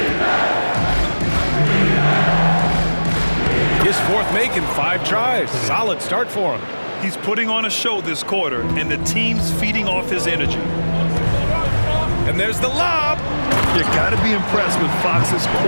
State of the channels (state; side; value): inverted; both; correlation -1.00